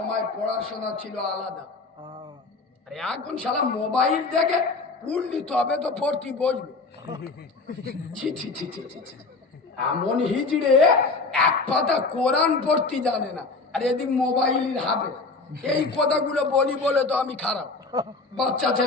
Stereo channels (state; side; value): quieter; right; 3.8 dB